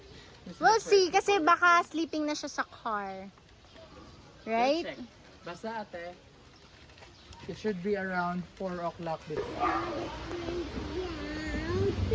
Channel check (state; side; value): identical; both; correlation 1.00